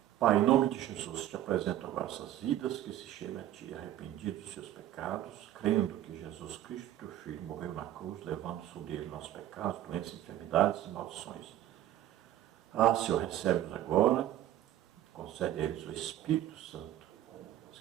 Pai, em nome de Jesus, te apresento agora essas vidas que se chegam a ti, arrependidos dos seus pecados, crendo que Jesus Cristo, teu Filho, morreu na cruz, levando sobre ele nossos pecados, doenças, enfermidades e maldições. Senhor, recebe-nos agora, concede a eles o Espírito Santo,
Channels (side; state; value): left; quieter; 12.6 dB